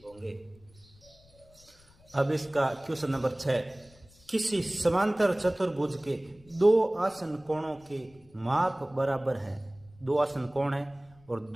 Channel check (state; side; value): noise; left; rumble, 27 dB below the sound